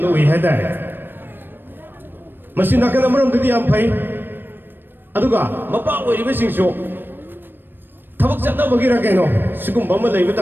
we had that. Masinaka number of the Yampai Aduga, Mapa, we sing show. Tabak Bagira Gano, Sukum Bama David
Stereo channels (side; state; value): left; late; 0.096 ms